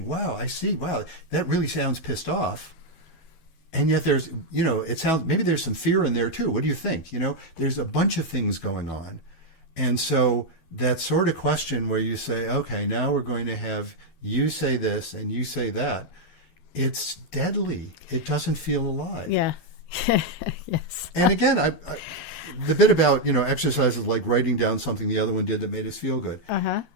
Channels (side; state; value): right; late; 12 ms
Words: Wow, I see. Wow, that really sounds pissed off. And yet there's, it sounds, maybe there's some fear in there too. What do you think? There's a bunch of things going on. And so that sort of question where you say, okay, now we're going to have you say this and you say that, it's deadly. It doesn't feel alive. Yeah. Yes. And again, the bit about, exercises like writing down something the other one did that made us feel good. Uh-huh.